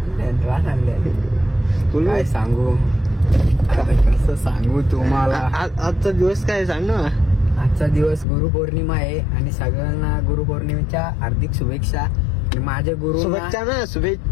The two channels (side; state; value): right; drops out; at 8.2 s